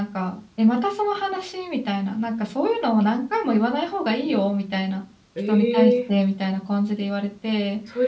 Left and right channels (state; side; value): identical; both; correlation 1.00